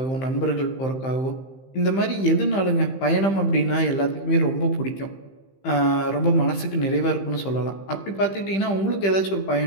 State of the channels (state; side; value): late; right; 15 ms